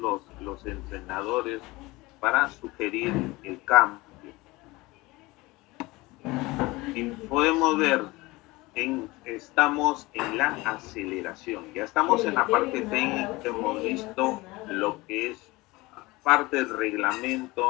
entrenadores para sugerir el cambio. Y podemos ver, estamos en la aceleración, ya estamos en la parte técnica, hemos visto lo que es parte del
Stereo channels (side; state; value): right; quieter; 21.6 dB